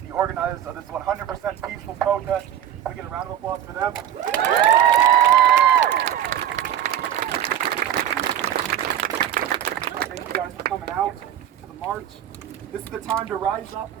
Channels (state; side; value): quieter; left; 10.5 dB